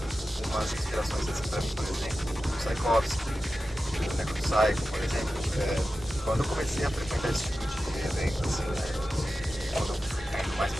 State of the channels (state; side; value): normal; both; correlation 0.93